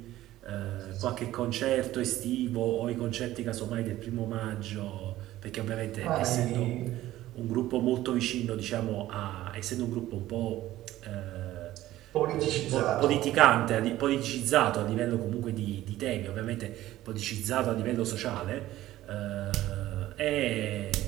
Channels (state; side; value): quieter; left; 15.0 dB